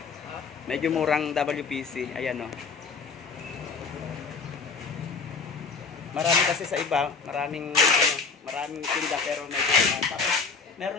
medyo murang WPC. Ayan o. Marami kasi sa iba, maraming tinda pero medyo tapos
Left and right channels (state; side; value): quieter; right; 4.9 dB